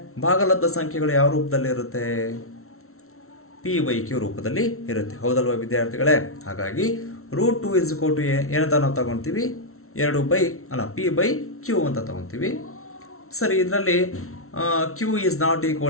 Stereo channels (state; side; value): late; right; 0.63 ms